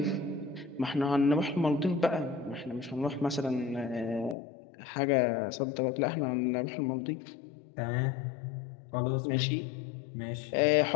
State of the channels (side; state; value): right; drops out; at 4.4 s